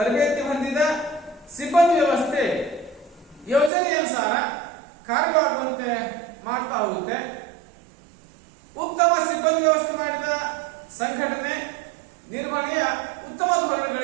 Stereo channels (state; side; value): drops out; left; at 3.7 s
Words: ಹೊಂದಿದ ಸಿಬ್ಬಂದಿ ವ್ಯವಸ್ಥೆ ಯೋಜನೆಯನುಸಾರ ಕಾರ್ಯವಾಗುವಂತೆ ಮಾಡ್ತಾ ಹೋಗುತ್ತೆ. ಉತ್ತಮ ಸಿಬ್ಬಂದಿ ವ್ಯವಸ್ಥೆ ಮಾಡಿದ ಸಂಘಟನೆ ನಿರ್ವಹಣೆಯ ಉತ್ತಮ